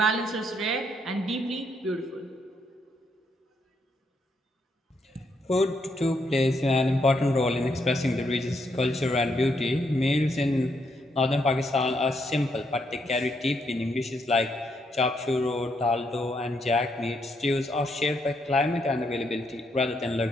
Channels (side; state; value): both; normal; correlation 0.76